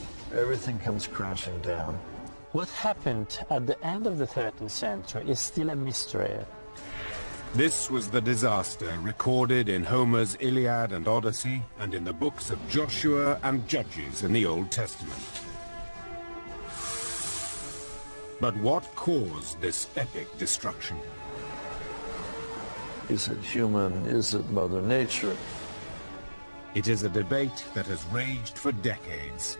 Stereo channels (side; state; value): both; inverted; correlation -1.00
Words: Everything comes crashing down. What happened at the end of the 13th century is still a mystery. This was the disaster recorded in Homer's Iliad and Odyssey, and in the books of Joshua and Judges in the Old Testament. But what caused this epic destruction? Is it human? Is it Mother Nature? It is a debate that has raged for decades.